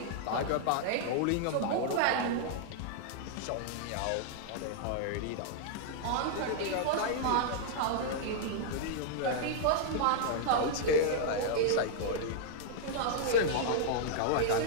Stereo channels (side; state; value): both; different; correlation -0.01